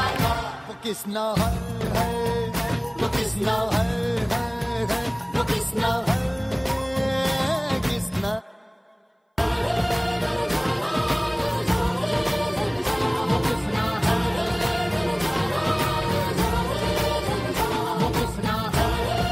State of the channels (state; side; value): identical; both; correlation 1.00